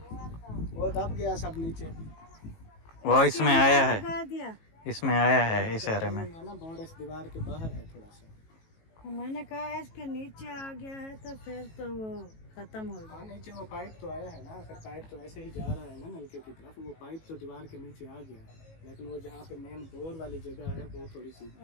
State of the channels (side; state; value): right; late; 18 ms